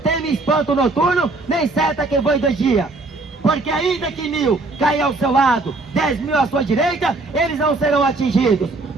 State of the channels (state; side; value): quieter; left; 3.2 dB